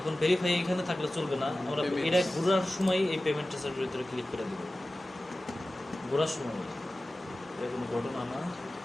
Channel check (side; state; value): both; normal; correlation 0.96